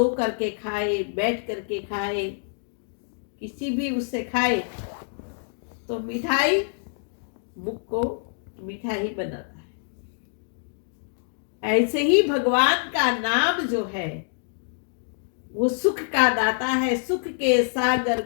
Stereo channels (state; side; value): silent; right; digital silence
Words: करके खाए, बैठ करके खाए, किसी भी उससे खाए, तो मिठाई मुख को मीठा ही बनाता है। ऐसे ही भगवान का नाम जो है वो सुख का दाता है। सुख के सागर